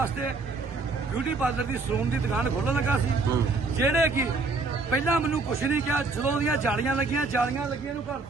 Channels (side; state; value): left; quieter; 3.8 dB